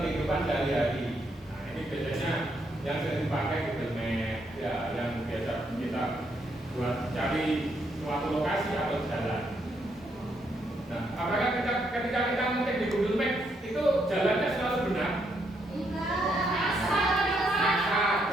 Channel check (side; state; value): both; normal; correlation 0.75